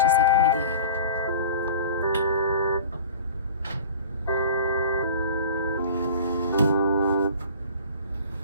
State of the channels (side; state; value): both; inverted; correlation -0.41